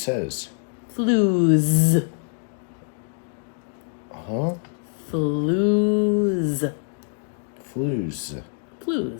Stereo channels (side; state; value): right; silent; 57 dB below the other